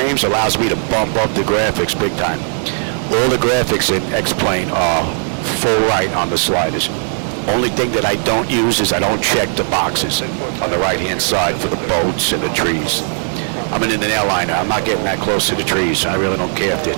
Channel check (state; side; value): silent; left; 57 dB below the other